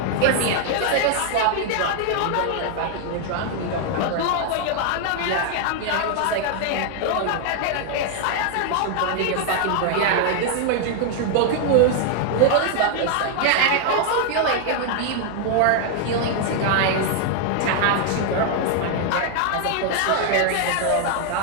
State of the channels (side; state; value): both; different; correlation 0.00